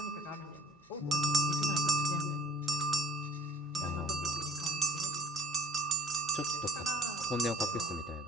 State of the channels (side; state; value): both; normal; correlation 0.50